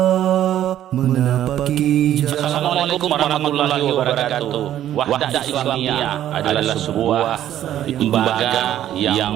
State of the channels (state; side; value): quieter; left; 11.8 dB